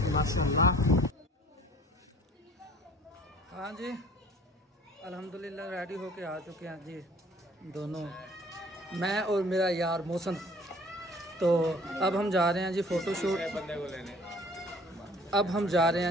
माशाल्लाह। हाँ जी अल्हम्दुलिल्लाह रेडी होके आ चुके हैं जी दोनों, मैं और मेरा यार मौसम। तो अब हम जा रहे हैं जी फ़ोटोशूट। बंदे को लेने अब हम जा रहे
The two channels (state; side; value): normal; both; correlation 0.52